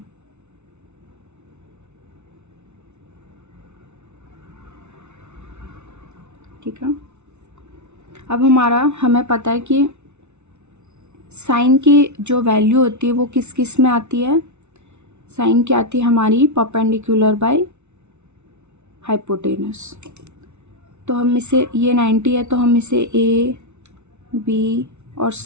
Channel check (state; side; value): late; left; 0.82 ms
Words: ठीक है, अब हमें पता है कि साइन की जो वैल्यू होती है वो किस किस में आती है। साइन की आती है हमारी परपेंडिकुलर बाय हाइपोटेनस। तो हम इसे, ये 90 है तो हम इसे ए बी और